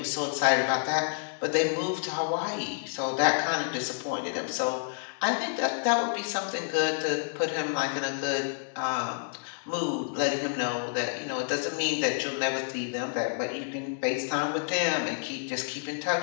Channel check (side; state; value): right; silent; digital silence